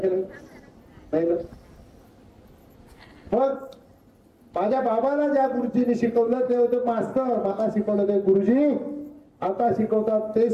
ना. मग माझ्या बाबाला ज्या गुरुजीने शिकवलं ते होते मास्तर. मला शिकवलं ते गुरुजी. आता शिकवतात ते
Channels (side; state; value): both; identical; correlation 1.00